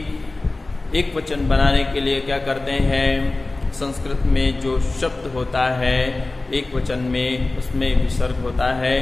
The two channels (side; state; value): right; quieter; 3.1 dB